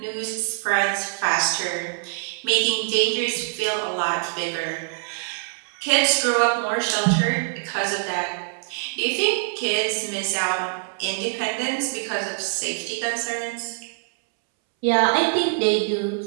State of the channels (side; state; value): left; silent; 63 dB below the other